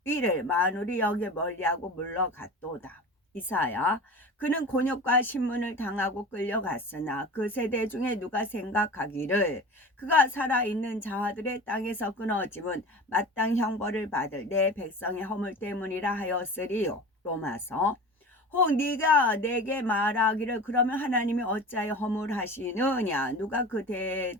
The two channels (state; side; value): normal; both; correlation 0.34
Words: 일을 만우리 여겨 멀리하고 물러갔도다. 이사야. 그는 곤욕과 신문을 당하고 끌려갔으나 그 세대 중에 누가 생각하기를 그가 살아있는 자들의 땅에서 끊어짐은 마땅 형벌을 받을 내 백성의 허물 때문이라 하였으리요. 로마서. 혹 네가 내게 말하기를 그러면 하나님이 어찌하여 허물하시느냐 누가 그